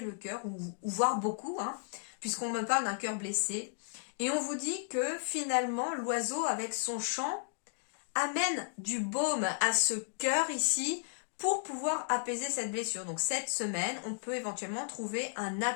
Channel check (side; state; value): right; silent; digital silence